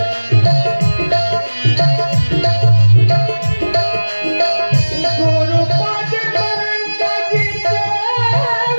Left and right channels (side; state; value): both; inverted; correlation -1.00